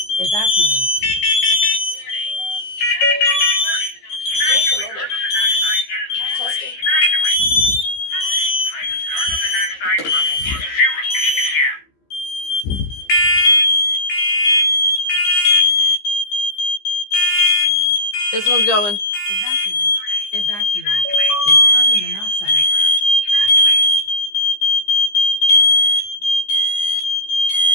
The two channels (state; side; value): late; right; 15 ms